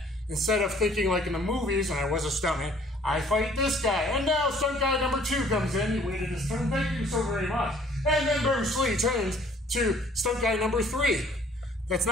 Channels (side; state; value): both; normal; correlation 0.57